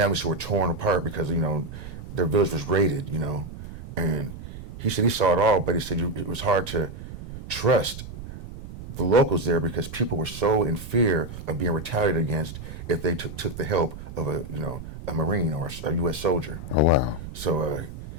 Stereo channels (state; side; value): noise; right; rumble, 11 dB below the sound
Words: who were torn apart because, their village was raided, and he said he saw it all, but he said it was hard to trust the locals there because people were so in fear of being retaliated against if they took the help of a Marine or a U.S. soldier. Oh, wow. So